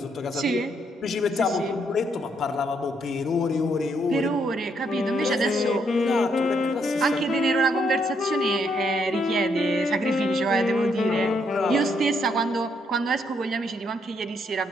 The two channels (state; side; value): normal; both; correlation 0.74